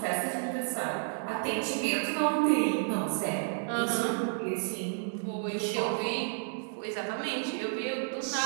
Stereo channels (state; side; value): silent; left; digital silence